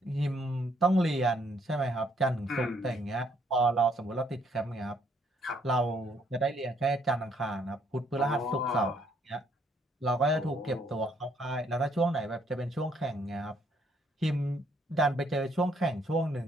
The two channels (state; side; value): normal; both; correlation 0.69